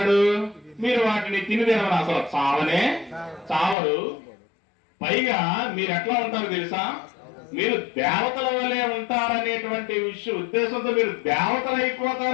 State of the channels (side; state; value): right; drops out; at 3.8 s